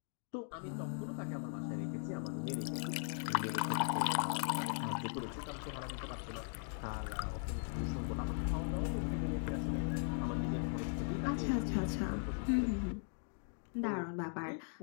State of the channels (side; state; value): right; silent; 52 dB below the other